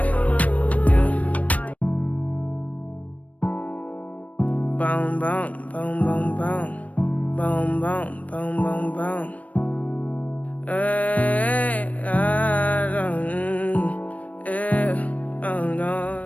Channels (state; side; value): late; right; 0.068 ms